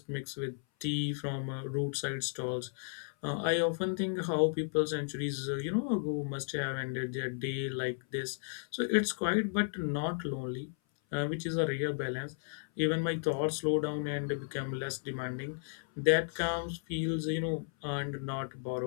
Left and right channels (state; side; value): silent; right; 55 dB below the other